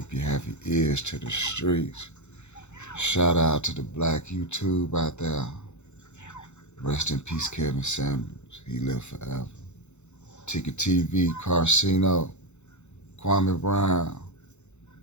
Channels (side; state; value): right; late; 0.83 ms